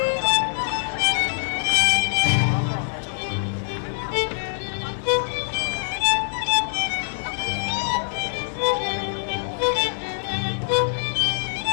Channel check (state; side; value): silent; right; 60 dB below the other